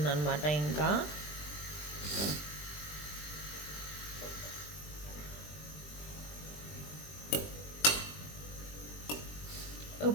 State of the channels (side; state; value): right; late; 20 ms